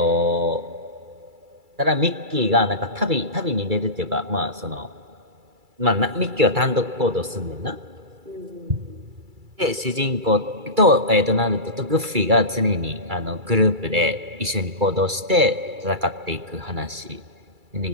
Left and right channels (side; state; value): left; late; 2.3 ms